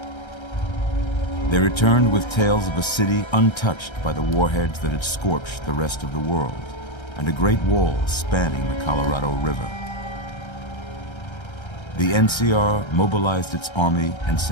They returned with tales of a city untouched by the warheads that had scorched the rest of the world, and a great wall spanning the Colorado River. The NCR mobilized its army and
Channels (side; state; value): right; late; 1.3 ms